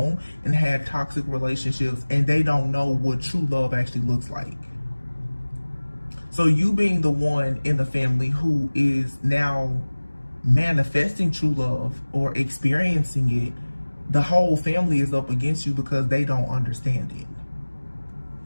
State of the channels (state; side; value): inverted; both; correlation -1.00